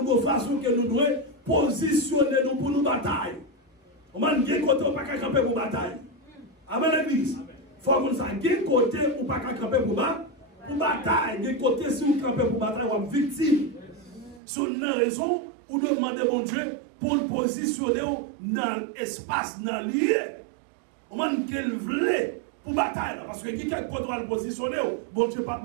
avons façon que nous devons positionner nous pour nous batailler. On a dit qu'on ne peut pas camper pour bataille. Amen, l'église. Il faut que nous ayons côté ou pas camper pour bataille. Des côtés, si vous campez pour bataille, vous êtes victime. Sur une raison, vous demandez mon Dieu pour le positionner dans l'espace, dans le lieu. On a dit qu'il voulait pour bataille. Parce que qui a contrôle positionner, bon Dieu pas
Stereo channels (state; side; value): drops out; left; at 14.4 s